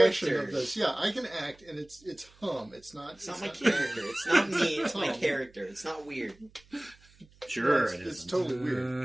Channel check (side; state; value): right; noise; hum, 28 dB below the sound